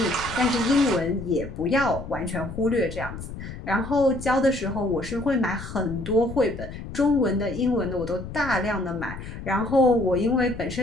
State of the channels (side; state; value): left; noise; rumble, 10 dB below the sound